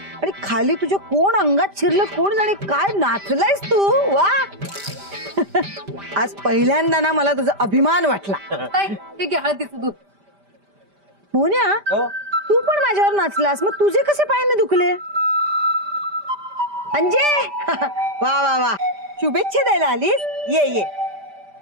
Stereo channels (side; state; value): left; late; 5.1 ms